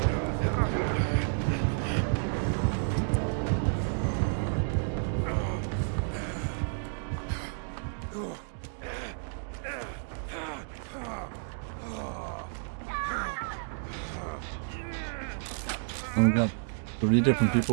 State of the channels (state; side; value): silent; left; digital silence